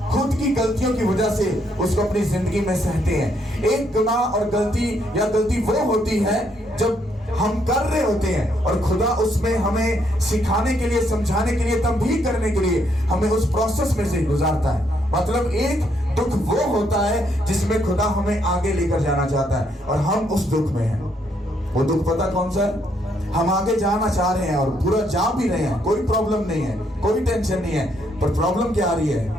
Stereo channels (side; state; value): both; normal; correlation 0.73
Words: खुद की गलतियों की वजह से उसको अपनी जिंदगी में सहते हैं। एक गुनाह और गलती वो होती है जब हम कर रहे होते हैं और खुदा उसमें हमें सिखाने के लिए, समझाने के लिए, तंबीह करने के लिए हमें उस प्रोसेस में से गुजारता है। मतलब एक दुख वो होता है जिसमें खुदा हमें आगे लेकर जाना चाहता है और हम उस दुख में हैं। वो दुख पता कौन सा है? हम आगे जाना चाह रहे हैं और पूरा जा भी रहे हैं, कोई प्रॉब्लम नहीं है, कोई टेंशन नहीं है, पर प्रॉब्लम क्या आ रही है